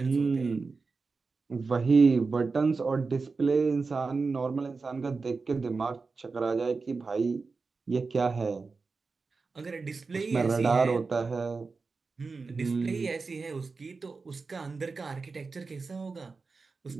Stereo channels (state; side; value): quieter; left; 4.3 dB